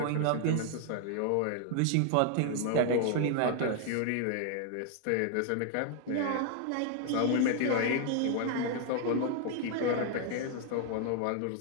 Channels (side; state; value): both; different; correlation 0.00